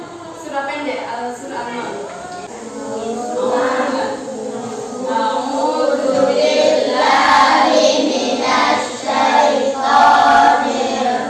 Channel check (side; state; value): both; identical; correlation 1.00